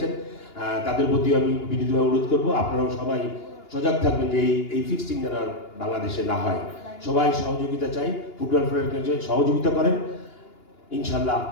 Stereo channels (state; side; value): late; right; 2.9 ms